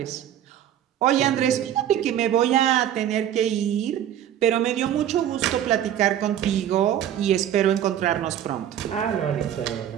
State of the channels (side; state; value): left; quieter; 10.7 dB